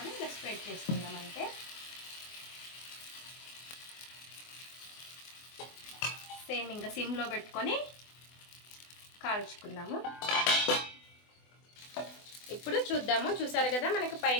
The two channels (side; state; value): right; late; 24 ms